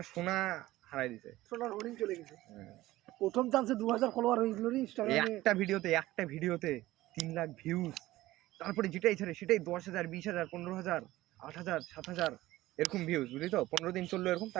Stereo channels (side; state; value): left; quieter; 16.8 dB